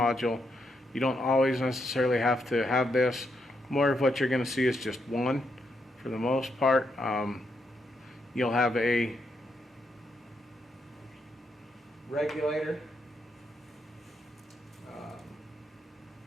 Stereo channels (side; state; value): both; normal; correlation 0.80